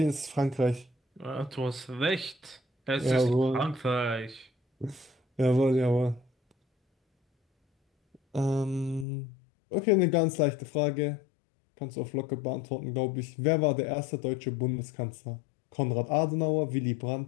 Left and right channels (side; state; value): right; drops out; at 9.1 s